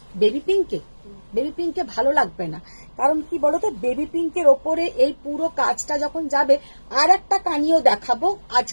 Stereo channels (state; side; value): inverted; both; correlation -1.00